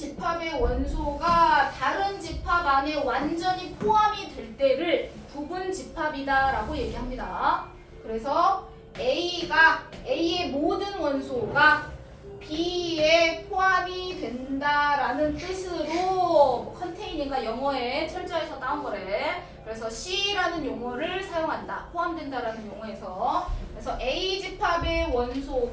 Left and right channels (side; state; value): both; identical; correlation 1.00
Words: 원소가 다른 집합 안에 완전히 포함이 될 때를 부분 집합이다 라고 얘기합니다. 그래서 A의 모든 원소가 B에 포함이 된다라는 뜻으로 컨테이닝과 영어에 철자에서 따온 거래. 그래서 C라는 용어를 사용한다. 포함된다라는 용어에서. 그래서 A 집합의